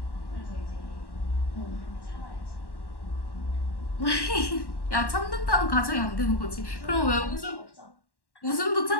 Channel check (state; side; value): late; right; 1.1 ms